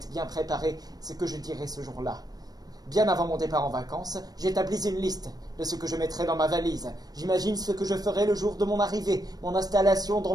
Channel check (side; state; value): left; late; 0.19 ms